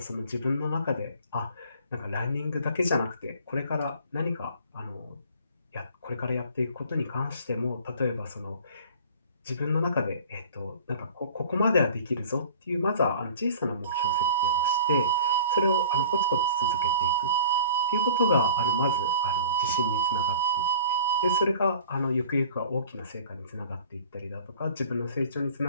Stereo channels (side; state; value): both; inverted; correlation -0.46